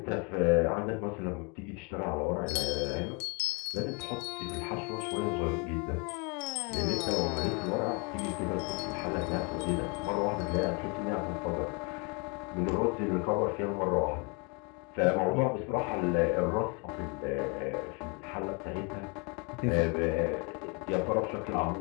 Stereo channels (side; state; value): right; quieter; 33.1 dB